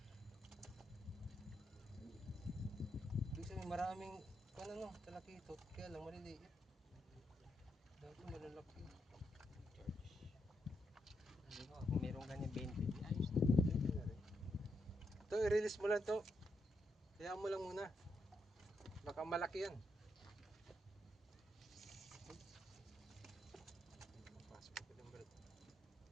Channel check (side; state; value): both; normal; correlation 0.81